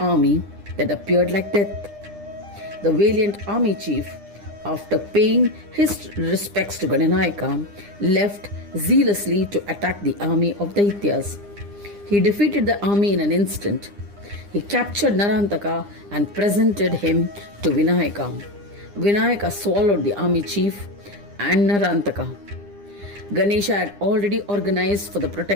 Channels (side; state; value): left; late; 9.9 ms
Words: that appeared like death. The valiant army chief, after paying his respects to Ganapataye, left zealously to attack the army of Daityas. He defeated the army in an instant. He captured Narantaka and presented him to Vinayaka. Vinayaka swallowed the army chief and Narantaka. Ganesha had already organized for the